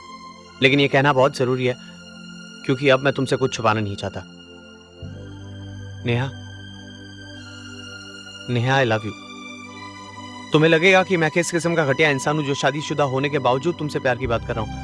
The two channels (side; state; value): both; identical; correlation 1.00